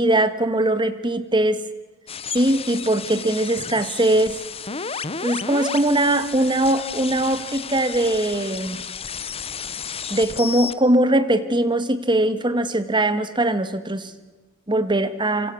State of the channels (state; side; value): normal; both; correlation 0.52